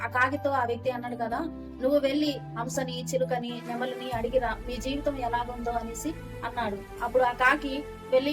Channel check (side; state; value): both; identical; correlation 1.00